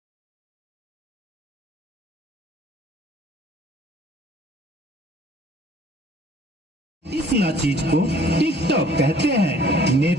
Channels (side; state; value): both; normal; correlation 0.55